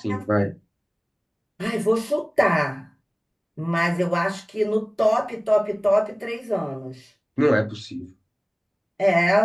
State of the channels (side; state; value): both; identical; correlation 1.00